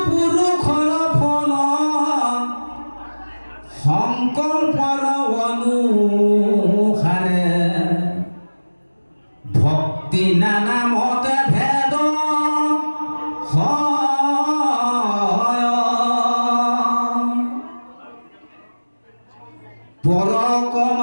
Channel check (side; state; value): both; inverted; correlation -1.00